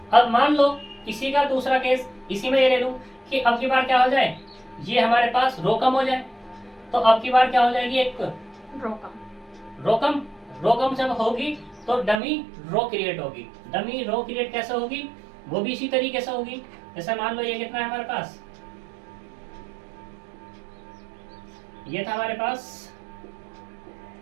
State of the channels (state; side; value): drops out; left; at 12.2 s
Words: अब मान लो इसी का दूसरा केस, इसी में ये ले लूं कि अब की बार क्या हो जाए, ये हमारे पास रो कम हो जाए, तो अब की बार क्या हो जाएगी, एक रो कम जब होगी तो डमी रो क्रिएट होगी। डमी रो क्रिएट कैसे होगी, वो भी इसी तरीके से होगी। जैसे मान लो ये कितना है हमारे पास, ये था हमारे पास